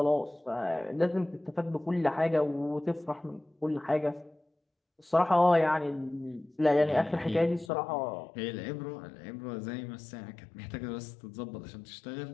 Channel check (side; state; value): right; drops out; at 7.7 s